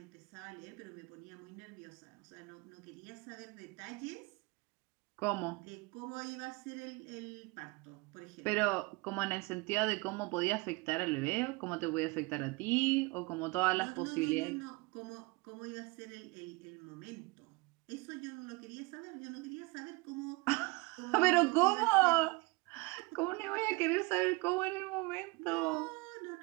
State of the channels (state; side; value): quieter; left; 25.5 dB